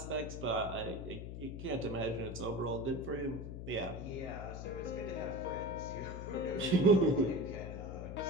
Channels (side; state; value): left; noise; hum, 7 dB below the sound